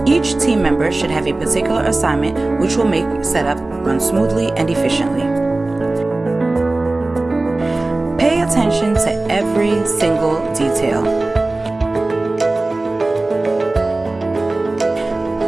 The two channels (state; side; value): quieter; left; 3.0 dB